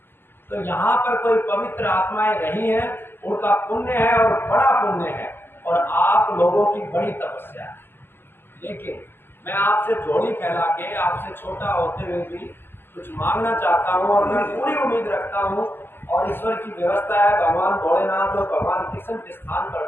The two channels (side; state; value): right; late; 0.10 ms